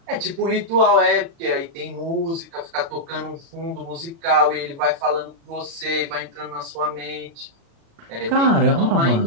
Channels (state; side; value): late; left; 36 ms